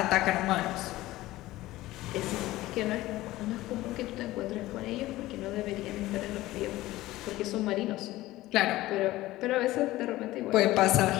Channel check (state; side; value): quieter; right; 17.1 dB